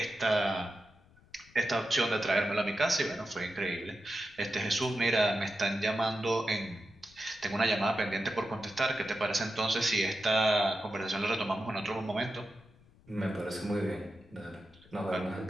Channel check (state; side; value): noise; left; rumble, 27 dB below the sound